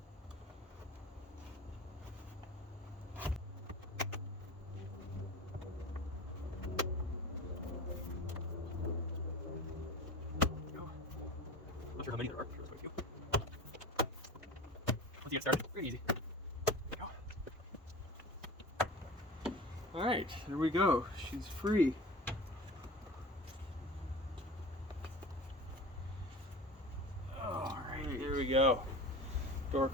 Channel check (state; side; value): normal; both; correlation 0.35